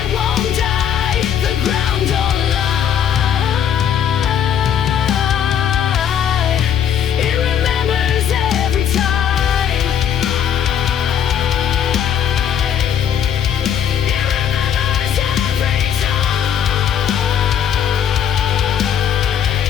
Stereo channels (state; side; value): quieter; right; 8.9 dB